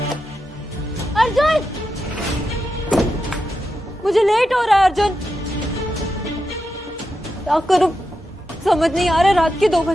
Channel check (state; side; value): normal; both; correlation 0.88